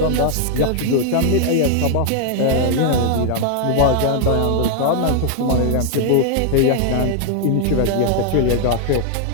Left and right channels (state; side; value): different; both; correlation 0.00